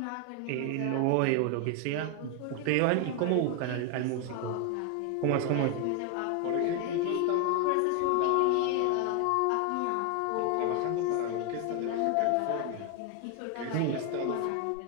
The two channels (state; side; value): different; both; correlation 0.01